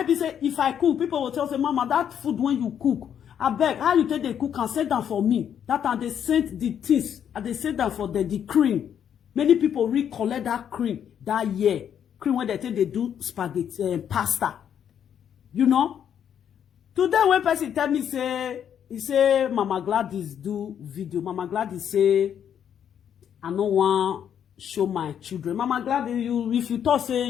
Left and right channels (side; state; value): right; quieter; 8.9 dB